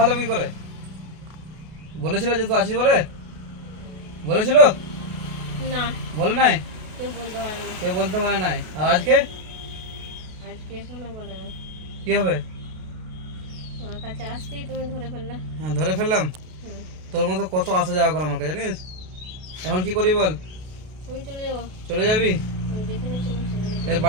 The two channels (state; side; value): late; left; 32 ms